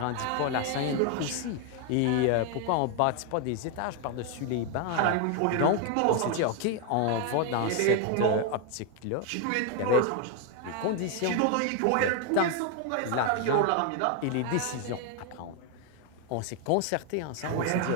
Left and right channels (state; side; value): different; both; correlation 0.01